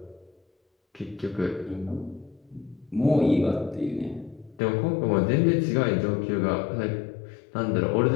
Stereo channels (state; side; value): drops out; right; at 4.6 s